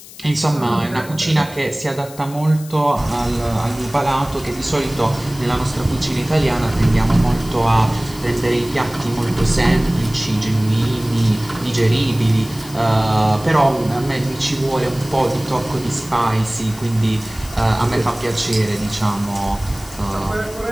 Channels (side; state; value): left; noise; hiss, 18 dB below the sound